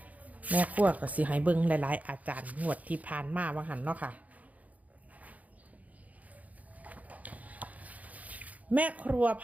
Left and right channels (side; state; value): left; late; 0.073 ms